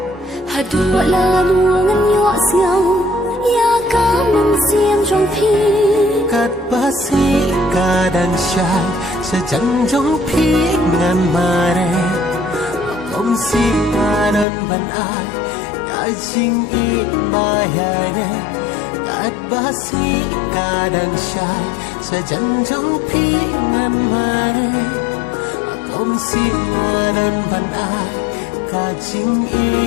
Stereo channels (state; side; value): drops out; right; at 14.5 s